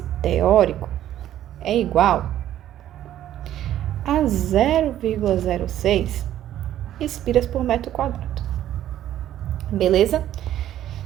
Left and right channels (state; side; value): quieter; left; 12.1 dB